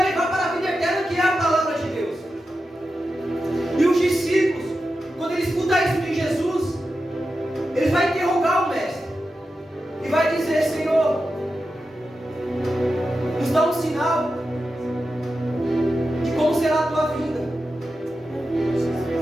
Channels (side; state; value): both; normal; correlation 0.90